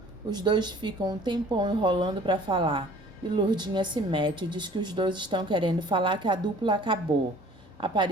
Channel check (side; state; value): both; normal; correlation 0.51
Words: Os dois ficam um tempão enrolando para falar. E Lourdinha se mete e diz que os dois estão querendo falar que a dupla acabou.